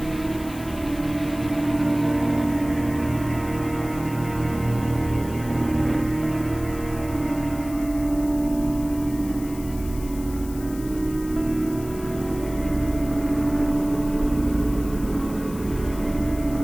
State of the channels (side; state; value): left; noise; hiss, 17 dB below the sound